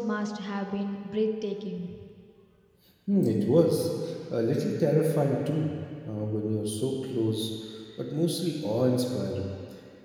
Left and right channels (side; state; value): both; identical; correlation 1.00